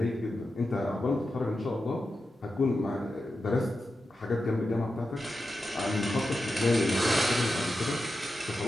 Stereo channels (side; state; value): both; normal; correlation 0.90